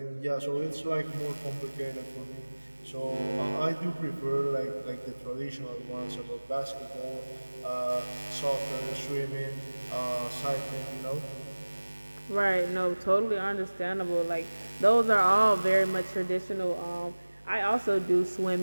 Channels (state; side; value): inverted; both; correlation -1.00